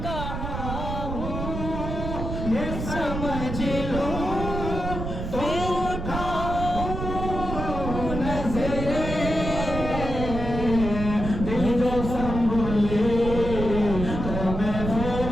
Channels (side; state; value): right; noise; rumble, 5 dB below the sound